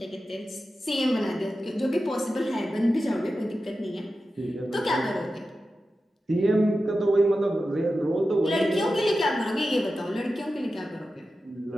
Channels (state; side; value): normal; both; correlation 0.92